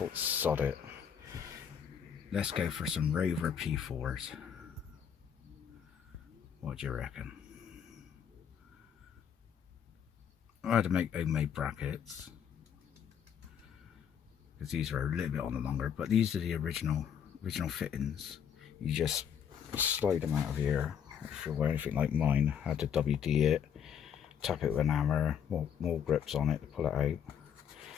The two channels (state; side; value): quieter; right; 8.1 dB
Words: sod it. Let's go for some Rover P4s. What do you reckon? I had to make homemade brackets, because these are a little bit on the longer, but these are the original fittings. You just slide them out of here. If you were anything like mine, I had to WD it, tap it with an hammer, more grips on it to pull it out,